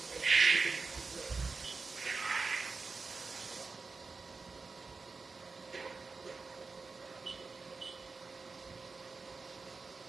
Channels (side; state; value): left; quieter; 4.3 dB